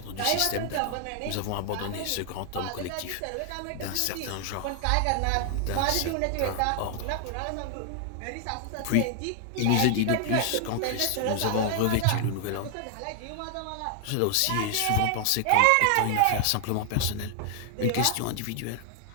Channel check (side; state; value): both; different; correlation 0.00